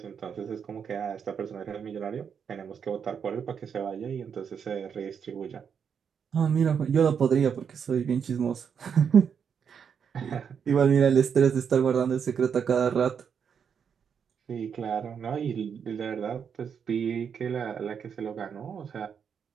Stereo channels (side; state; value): left; quieter; 7.2 dB